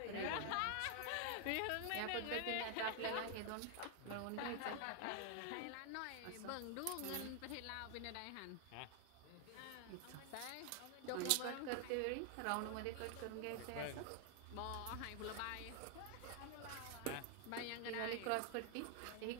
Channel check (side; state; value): both; different; correlation 0.00